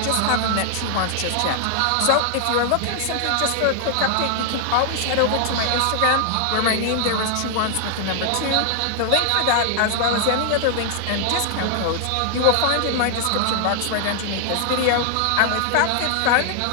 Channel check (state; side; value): different; both; correlation 0.00